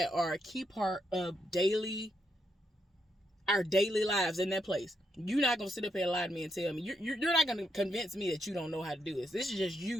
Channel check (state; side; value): normal; both; correlation 0.80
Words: are a key part of our daily lives in that place. You're not going to sit up here and lie to me and tell me. You're not going to convince me that you don't know how to do this. This is just